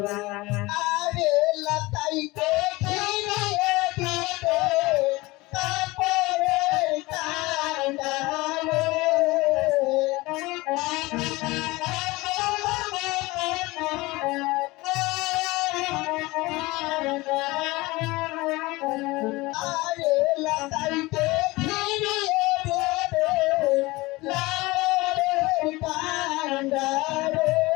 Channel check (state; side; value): quieter; right; 21.5 dB